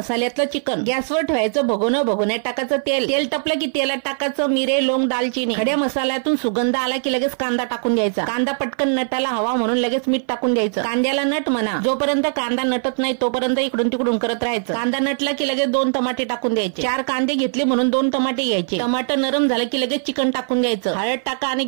चिकन। गॅसवर ठेवायचं भगोन्यात टाकायचं तेल टपलं की तेलात टाकायचं मिरे, लवंग, दालचिनी। खड्या मसाल्यातून सुगंध आला की लगेच कांदा टाकून द्यायचा। कांदा पटकन नटाला हवा म्हणून लगेच मीठ टाकून द्यायचं। कांद्याला नट म्हणा, जोपर्यंत कांदा नटत नाही तोपर्यंत इकडून तिकडून करत राहायचं। कांदा नटला की लगेच 2 टमाटे टाकून द्यायचे। 4 कांदे घेतले म्हणून 2 टमाटे घ्यायचे। टमाटर नरम झालं की लगेच चिकन टाकून द्यायचं। हळद टाका आणि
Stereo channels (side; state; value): left; silent; 57 dB below the other